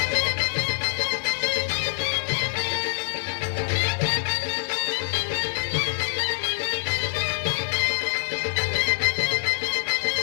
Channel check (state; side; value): silent; right; digital silence